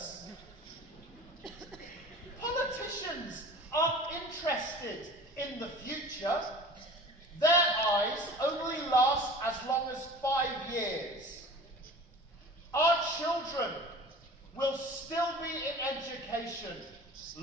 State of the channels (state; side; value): normal; both; correlation 0.40